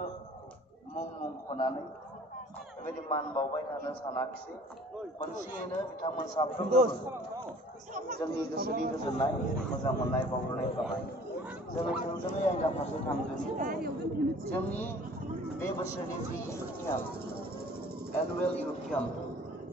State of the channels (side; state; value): both; normal; correlation 0.50